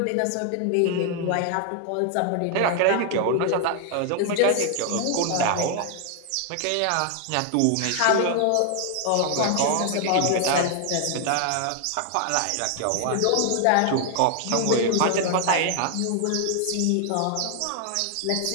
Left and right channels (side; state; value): both; different; correlation 0.00